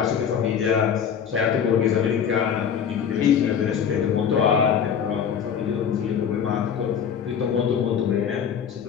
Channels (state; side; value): quieter; right; 7.9 dB